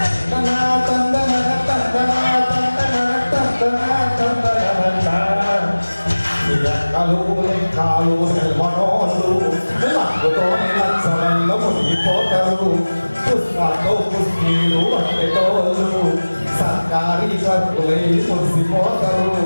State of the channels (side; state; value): both; inverted; correlation -1.00